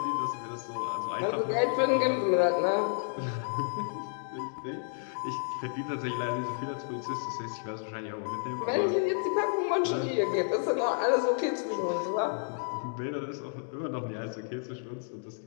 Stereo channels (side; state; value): right; silent; digital silence